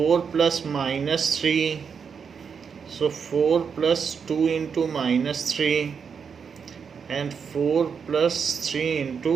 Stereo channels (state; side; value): quieter; left; 6.4 dB